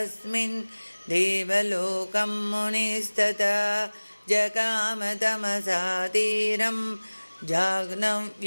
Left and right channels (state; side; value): inverted; both; correlation -1.00